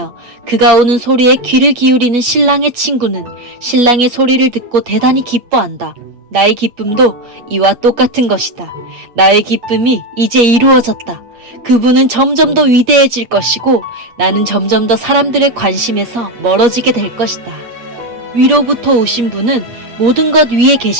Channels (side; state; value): left; late; 8.3 ms